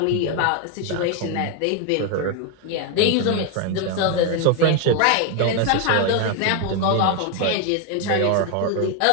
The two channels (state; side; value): different; both; correlation 0.01